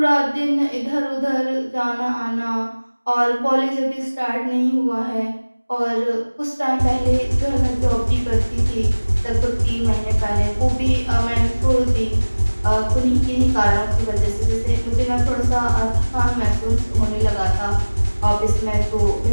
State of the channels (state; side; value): inverted; both; correlation -1.00